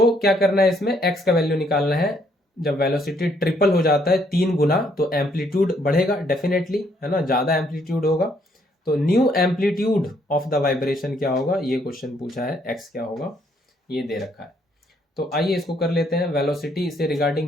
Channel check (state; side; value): normal; both; correlation 0.69